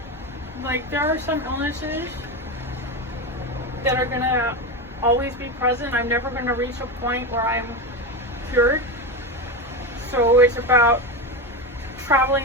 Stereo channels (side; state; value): both; normal; correlation 0.17